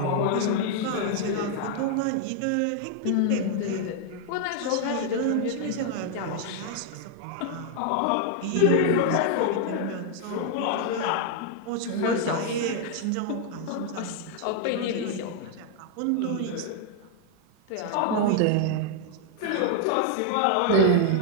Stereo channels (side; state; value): both; different; correlation 0.00